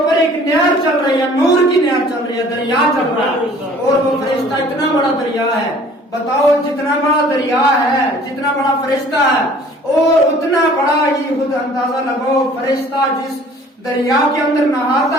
ایک نہر چل رہی ہے، نور کی نہر چل رہی ہے، دریا چل رہا ہے، اور وہ فرشتہ اتنا بڑا دریا ہے۔ بتاؤ جتنا بڑا دریا ہے، جتنا بڑا فرشتہ ہے، اور اتنا بڑا ہی خود اندازہ لگاؤ فرشتہ جس دریا کے اندر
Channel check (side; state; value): both; normal; correlation 0.52